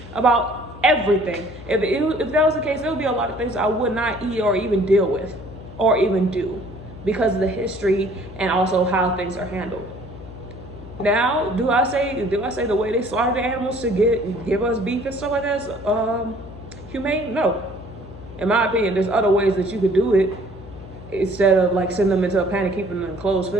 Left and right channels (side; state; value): left; noise; hum, 16 dB below the sound